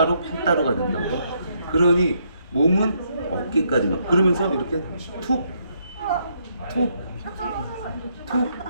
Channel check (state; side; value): inverted; both; correlation -0.74